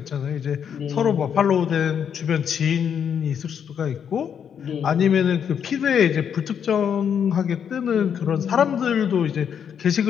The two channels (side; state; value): right; quieter; 8.0 dB